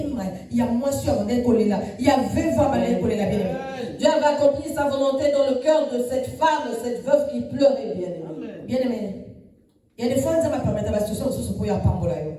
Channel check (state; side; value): identical; both; correlation 1.00